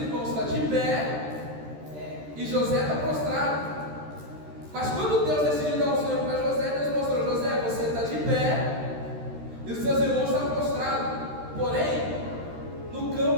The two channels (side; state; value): left; late; 13 ms